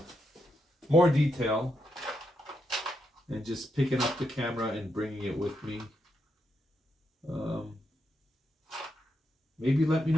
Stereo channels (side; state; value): both; normal; correlation 0.82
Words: more detail and just picking up the camera and bringing it with me. Maybe let me